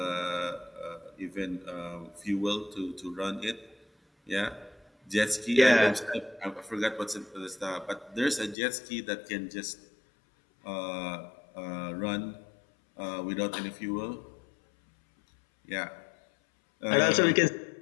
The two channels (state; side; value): drops out; right; at 8.6 s